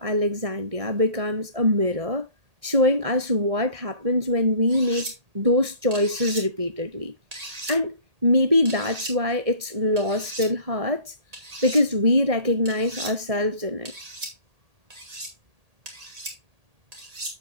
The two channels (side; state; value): left; late; 1.8 ms